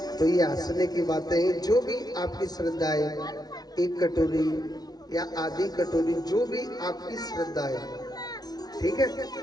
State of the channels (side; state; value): right; late; 0.19 ms